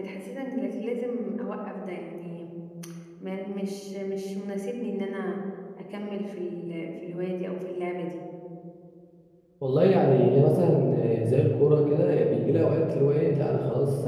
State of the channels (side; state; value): both; identical; correlation 1.00